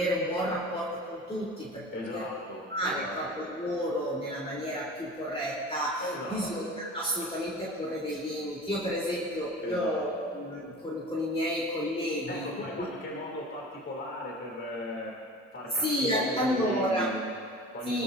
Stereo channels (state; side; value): normal; both; correlation 0.37